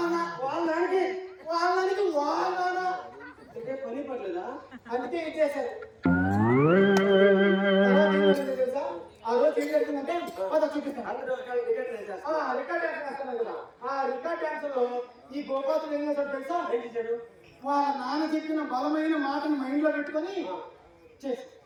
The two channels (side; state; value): both; identical; correlation 1.00